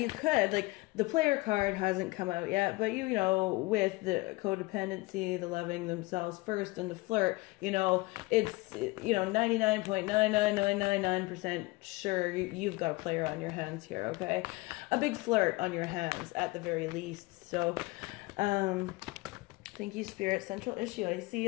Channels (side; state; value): right; quieter; 22.8 dB